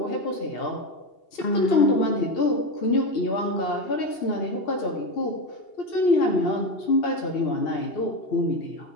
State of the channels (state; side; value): late; right; 2.7 ms